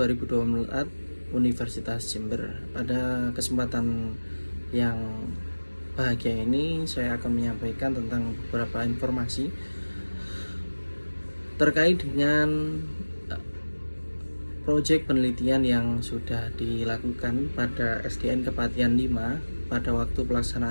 Universitas Jember. Pada kesempatan yang bahagia ini saya akan menyampaikan tentang beberapa informasi terkait dengan proyek penelitian yang sudah dilakukan pada SDN Kepatihan 5 pada waktu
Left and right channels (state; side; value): inverted; both; correlation -1.00